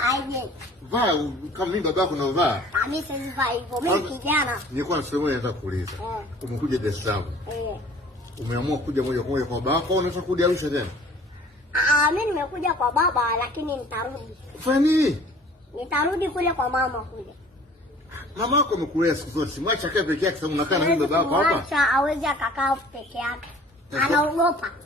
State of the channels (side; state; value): both; normal; correlation 0.50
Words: Vaa kama mimi babako unavaa. Mimi siwezi vaa hivyo. Mimi kijana. Nilikuwa na swali moja nataka kuuliza. Umekuja Dar es Salaam. Umeamua kuja moja kwa moja kwa babako au unataka kurudi Arusha tena? Mimi nimekuja kwa baba lakini nitarudi. Fanya nini? Nitarudi kule kwa mama kule. Mama yako amekulea siku zote. Simwacha akae peke yake sababu unakaa na mimi babako hapa. Acha hawezi akakaa peke yake. Anaogopa.